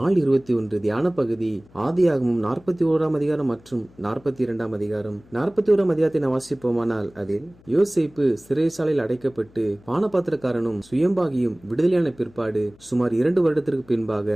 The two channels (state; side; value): noise; left; hum, 27 dB below the sound